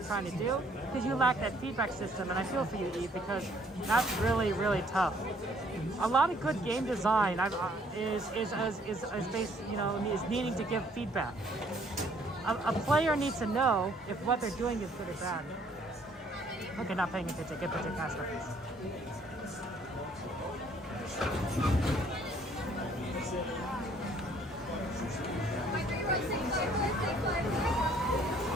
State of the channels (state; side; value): normal; both; correlation 0.62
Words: trying to do because you lack that feedback system. And I feel for you, Eve, because that's really, really tough. A lot of good game design is based, is needing to give feedback. A player needs to know if what they're doing is good or bad. Okay, not paying attention. Good picture, cast reference.